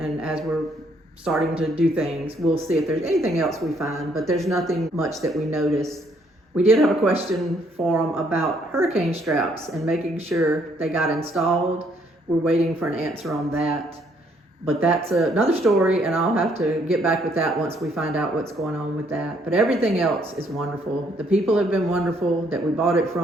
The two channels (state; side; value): normal; both; correlation 0.68